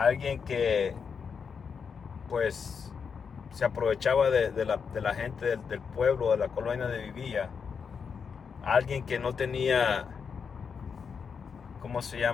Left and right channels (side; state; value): right; quieter; 6.2 dB